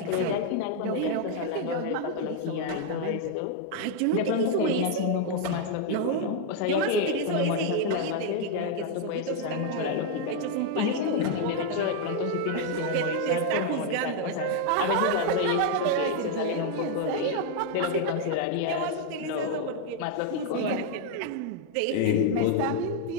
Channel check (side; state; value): both; different; correlation 0.00